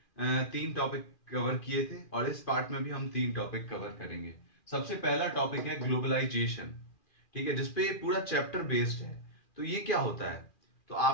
3 टॉपिक कवर किए थे और इस पार्ट में भी हम 3 टॉपिक कवर करेंगे। सबसे पहला टॉपिक है ग्लोबलाइजेशन, ठीक है, जिसपे पूरा चैप्टर बेस्ड है। तो ये क्या होता है? तो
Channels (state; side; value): late; right; 2.4 ms